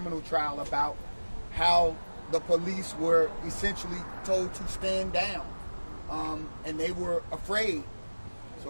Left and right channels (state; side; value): inverted; both; correlation -1.00